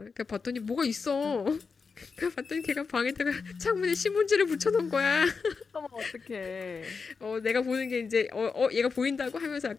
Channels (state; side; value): quieter; right; 5.1 dB